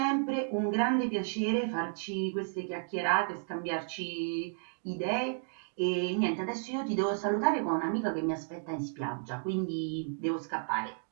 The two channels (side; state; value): left; silent; digital silence